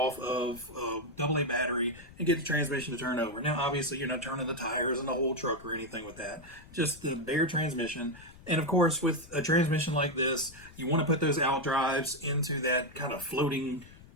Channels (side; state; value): left; noise; rumble, 21 dB below the sound